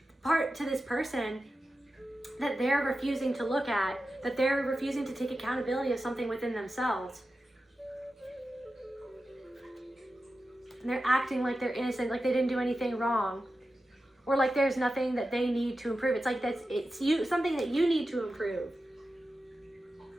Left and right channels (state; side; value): normal; both; correlation 0.92